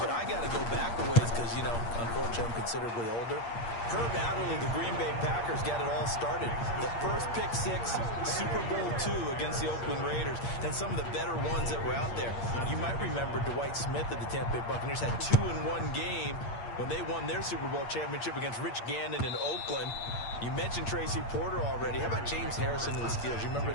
I got to go back a ways because, you know, unfortunately I'm considerably older. Herb Adderley, the Green Bay Packers, got it all started. The first pick six, Super Bowl II against the Oakland Raiders, and some of the better ones that were out there. You might remember Dwight Smith of the Tampa Bay Buccaneers had 2 in one game when they won their Super Bowl championship against Rich Gannon in Oakland. You mentioned Tracy Porter already. How about James Harrison of the Steelers? You remember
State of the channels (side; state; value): right; late; 8.6 ms